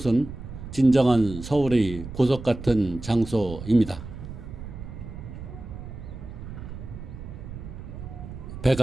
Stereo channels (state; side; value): noise; right; rumble, 11 dB below the sound